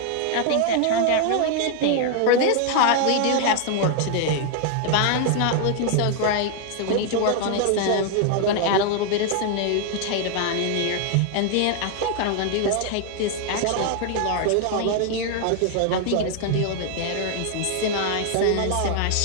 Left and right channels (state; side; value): different; both; correlation 0.00